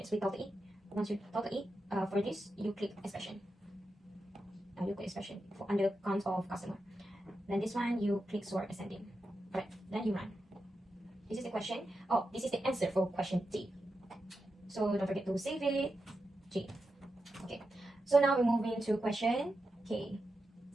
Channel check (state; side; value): normal; both; correlation 0.89